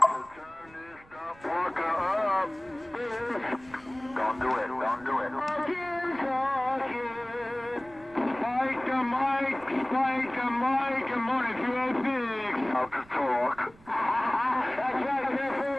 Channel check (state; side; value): noise; right; rumble, 25 dB below the sound